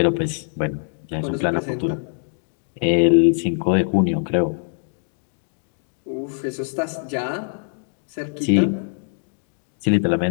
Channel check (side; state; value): right; silent; digital silence